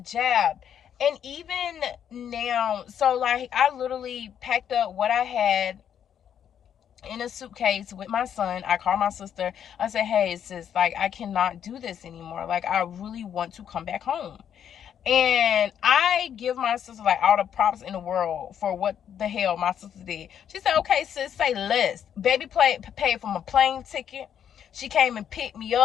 And even now, so like, I literally packed up what I had in a suitcase with my son. I called my sister. I said, hey, sis, like, I cannot do this anymore. Like, I really want to come back home. And I give my sister like all the props in the world for what the hell my sister did. She said, okay, sis, say less. Baby paid for my plane ticket. She came and picked me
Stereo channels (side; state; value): right; quieter; 9.0 dB